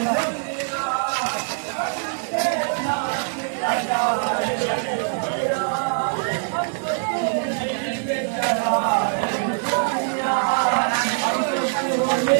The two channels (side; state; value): left; silent; 63 dB below the other